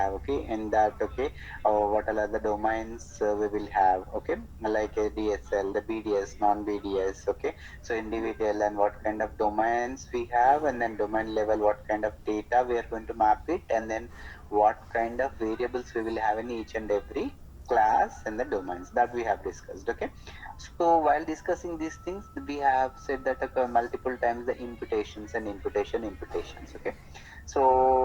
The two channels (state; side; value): identical; both; correlation 1.00